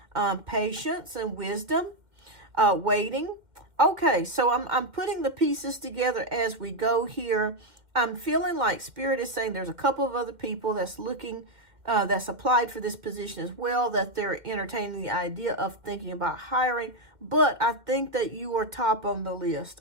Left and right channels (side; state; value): left; late; 2.0 ms